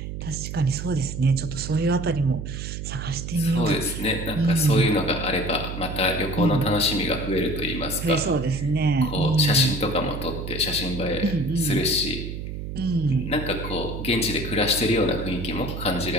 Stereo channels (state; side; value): noise; right; hum, 7 dB below the sound